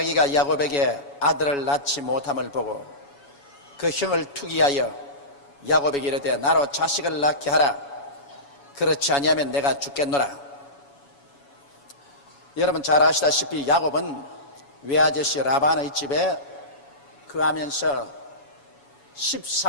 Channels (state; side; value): late; right; 7.1 ms